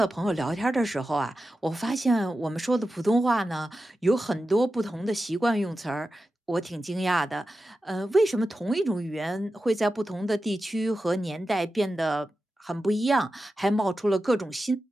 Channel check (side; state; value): both; normal; correlation 0.92